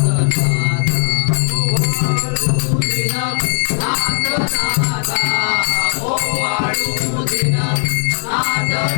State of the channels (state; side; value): silent; right; 68 dB below the other